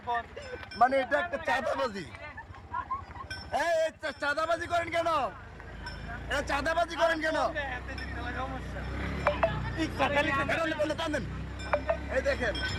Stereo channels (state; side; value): identical; both; correlation 1.00